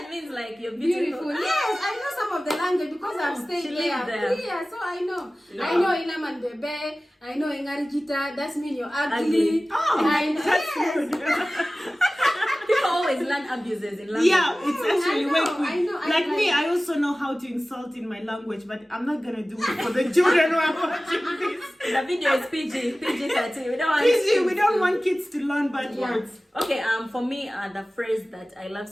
means like you're beautiful. Beautiful. Yes, I know some of the language because I've stayed she there. lived there. Yeah, so I know. Yeah. I know Ilaman bebe. I know Engarijita. That's mean you're ugly. Ugly. Oh, I know. that's Yes. good. People always learn abuses in language. Yeah, it's actually I way know, quick. I know, Like I me, I also know how to insult in my language, but I'm not gonna do it for the children who are watching this. The video is PG-13. We don't want Please, we don't want kids to learn bad words. Okay, for me, the phrase that I love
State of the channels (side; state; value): both; normal; correlation 0.97